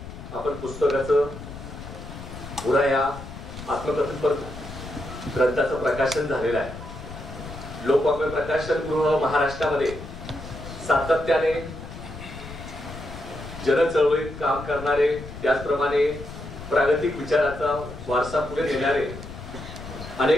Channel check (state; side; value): noise; left; rumble, 12 dB below the sound